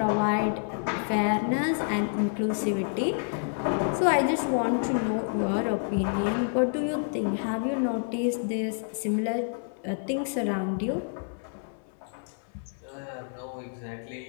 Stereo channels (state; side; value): silent; right; 59 dB below the other